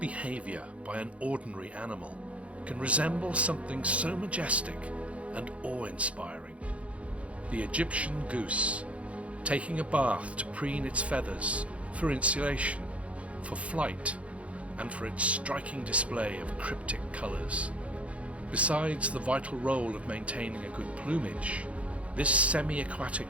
by an ordinary animal can resemble something so majestic and awe-inspiring. The Egyptian goose, taking a bath to preen its feathers for insulation, for flight, and for its striking display of cryptic colours. Besides the vital role of maintaining a good plumage, this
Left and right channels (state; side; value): late; left; 0.063 ms